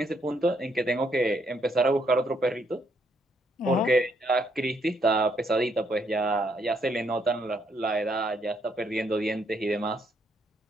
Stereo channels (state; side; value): normal; both; correlation 0.73